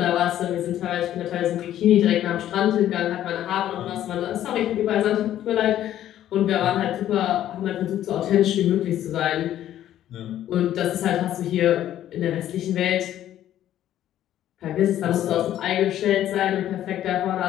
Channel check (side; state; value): right; quieter; 12.0 dB